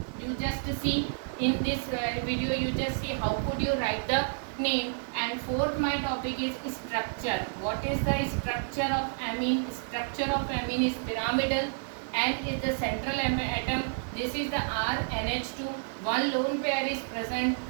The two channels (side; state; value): left; silent; digital silence